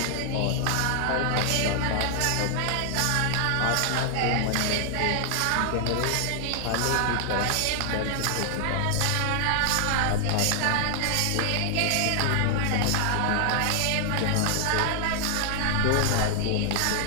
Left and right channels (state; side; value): different; both; correlation 0.00